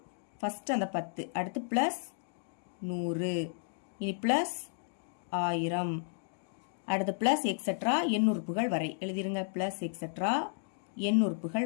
ஃபர்ஸ்ட் அந்த 10, அடுத்து பிளஸ் 100, இனி பிளஸ் 1000, அடுத்து பிளஸ் எக்ஸெட்ரா எண் உறுப்புகள் வரை எழுதிருங்க. பிளஸ் எக்ஸெட்ரா எண் உறுப்புகள்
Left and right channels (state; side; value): silent; right; digital silence